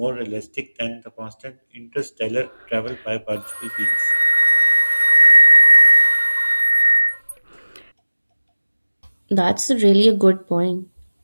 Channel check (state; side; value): inverted; both; correlation -1.00